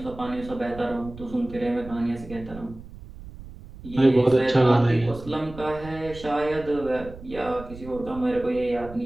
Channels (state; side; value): noise; right; rumble, 16 dB below the sound